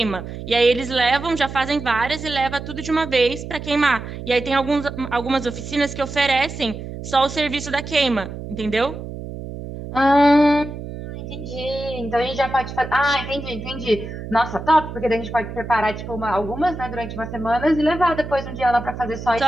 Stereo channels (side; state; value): right; noise; hum, 9 dB below the sound